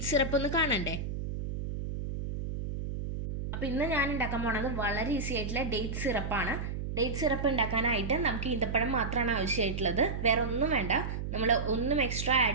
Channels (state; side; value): noise; right; hum, 4 dB below the sound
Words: സിറപ്പ് ഒന്ന് കാണണ്ടേ? അപ്പോൾ ഇന്ന് ഞാൻ ഉണ്ടാക്കാൻ പോണത് വളരെ ഈസി ആയിട്ടുള്ള ഡേറ്റ് സിറപ്പാണ്. ഡേറ്റ് സിറപ്പ് ഉണ്ടാക്കാനായിട്ട് നമുക്ക് ഈന്തപ്പഴം മാത്രമാണ് ആവശ്യമായിട്ടുള്ളത്, വേറെ ഒന്നും വേണ്ട. നമ്മൾ ഒന്നും എക്സ്ട്രാ